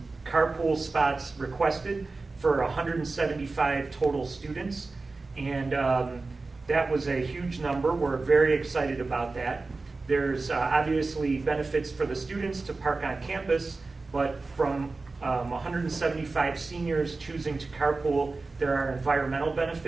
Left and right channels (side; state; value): left; quieter; 3.7 dB